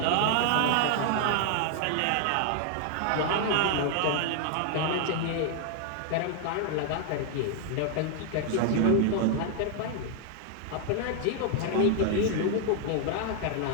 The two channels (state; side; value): different; both; correlation 0.00